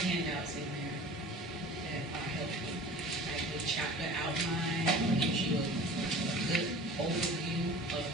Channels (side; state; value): both; normal; correlation 0.41